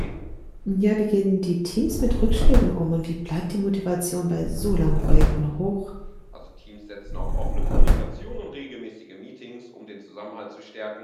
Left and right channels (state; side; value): identical; both; correlation 1.00